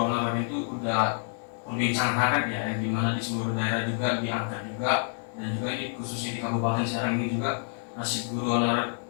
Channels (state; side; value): silent; right; 59 dB below the other